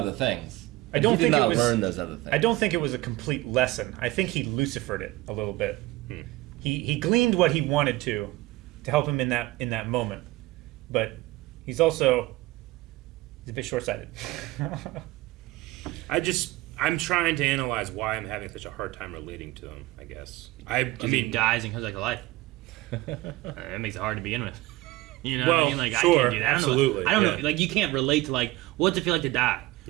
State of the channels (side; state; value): left; quieter; 18.8 dB